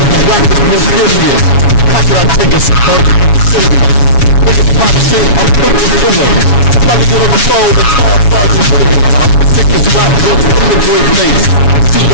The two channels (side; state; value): right; late; 7.2 ms